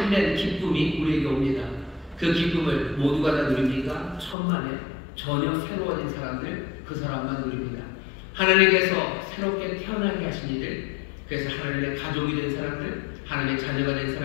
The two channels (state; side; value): drops out; right; at 4.4 s